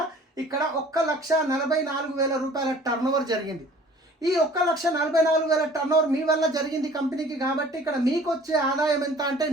ఇక్కడ 1,44,000 రూపాయల టర్నోవర్ జరిగింది. ఈ 1,44,000 టర్నోవర్ మీ వల్ల జరిగింది కంపెనీకి. కాబట్టి ఇక్కడ మీకు వచ్చే ఆదాయం ఎంత అంటే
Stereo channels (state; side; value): normal; both; correlation 0.50